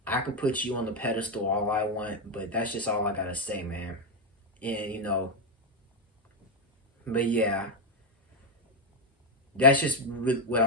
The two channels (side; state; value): both; normal; correlation 0.06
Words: I can put you on the pedestal all I want, but that's just all I gotta say, man. And but yeah, that's just what